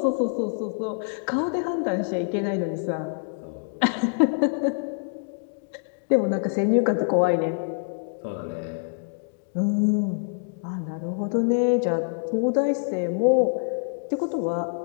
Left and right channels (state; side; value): silent; right; digital silence